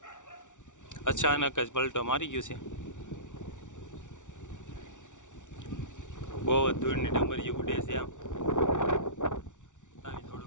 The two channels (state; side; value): late; right; 0.86 ms